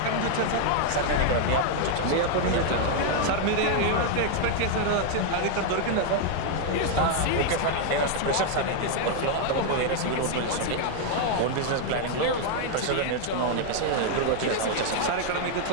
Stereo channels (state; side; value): different; both; correlation 0.00